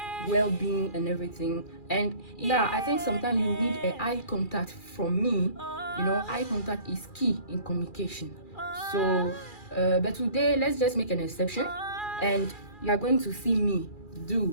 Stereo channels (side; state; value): right; late; 2.4 ms